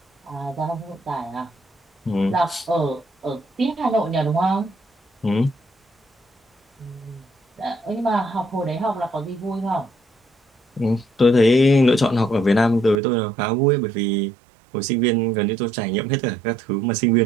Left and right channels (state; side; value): drops out; left; at 13.0 s